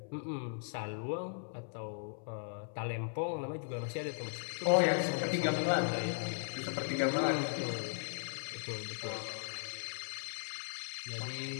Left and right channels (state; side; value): silent; right; 53 dB below the other